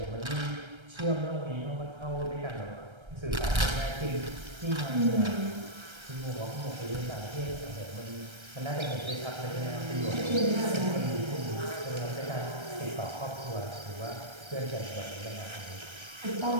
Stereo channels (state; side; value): late; left; 1.3 ms